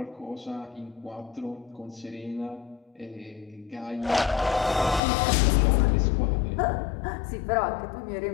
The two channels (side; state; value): right; drops out; at 5.0 s